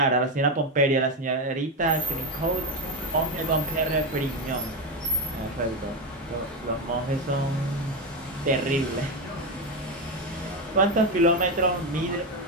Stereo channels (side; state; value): both; normal; correlation 0.12